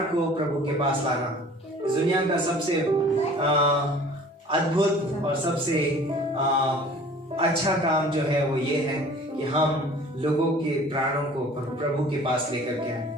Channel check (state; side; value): normal; both; correlation 0.48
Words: को प्रभु के पास लाना। इस दुनिया का सबसे अद्भुत और सबसे अच्छा काम जो है वो ये है कि हम लोगों के प्राणों को प्रभु के पास लेकर के आए।